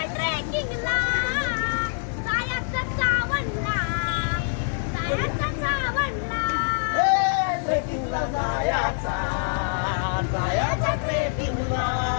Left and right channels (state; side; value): silent; right; 56 dB below the other